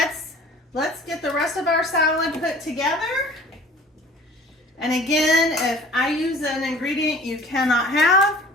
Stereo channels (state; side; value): normal; both; correlation 0.47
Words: get the rest of our salad put together. And again, if I use an ingredient you cannot have,